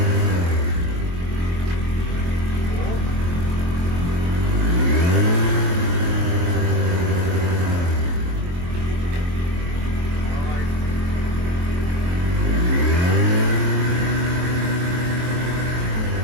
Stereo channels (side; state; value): left; late; 23 ms